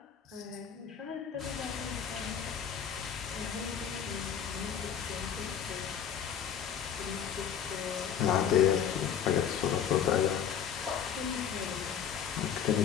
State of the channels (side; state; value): right; quieter; 8.4 dB